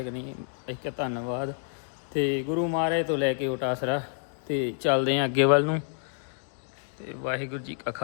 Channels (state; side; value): silent; right; digital silence